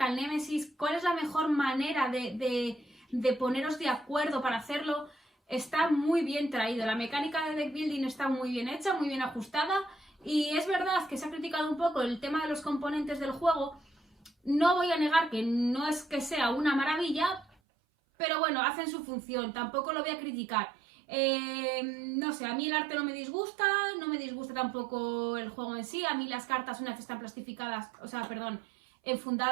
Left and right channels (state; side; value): drops out; left; at 17.5 s